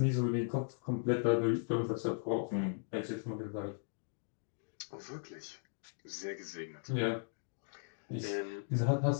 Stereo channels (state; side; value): silent; right; digital silence